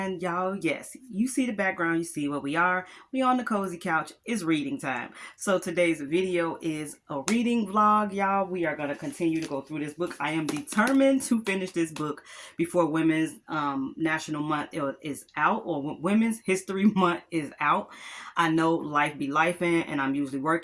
y'all, yes, you see the background, you see where we are. We on the cozy couch. It's reading time. So today's video is a reading vlog, y'all. We are going to continue to go through this book. I am determined to finish this book before Women's National Month is out, or Women's History Month is out. I know life be lifing, and I'm usually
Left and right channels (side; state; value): both; identical; correlation 1.00